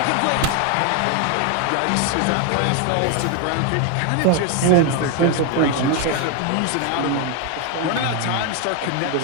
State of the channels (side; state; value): both; different; correlation 0.01